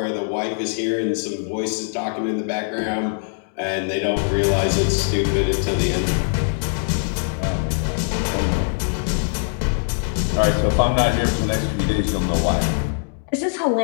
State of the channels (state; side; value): silent; right; digital silence